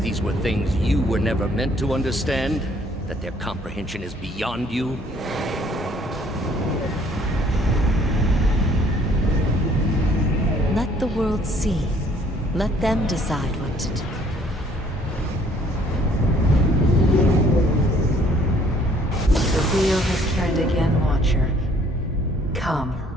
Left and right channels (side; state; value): both; normal; correlation 0.61